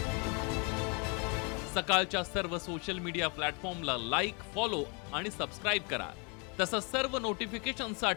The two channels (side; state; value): right; quieter; 33.7 dB